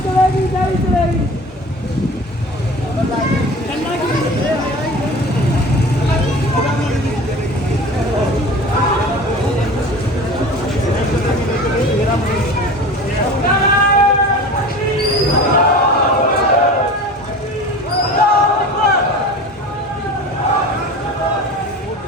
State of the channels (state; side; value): normal; both; correlation 0.37